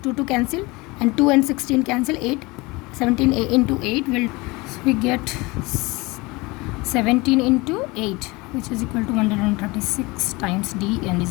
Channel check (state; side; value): quieter; right; 23.9 dB